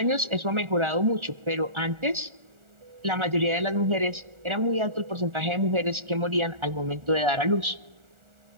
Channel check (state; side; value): late; left; 1.4 ms